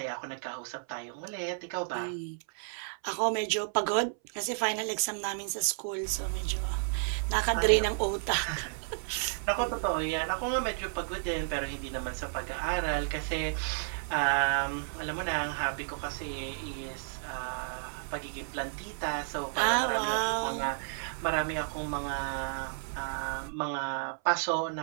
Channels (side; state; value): left; silent; 56 dB below the other